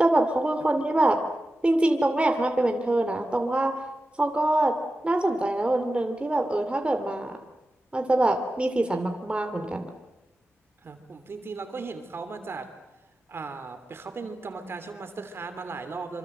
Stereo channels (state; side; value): normal; both; correlation 0.93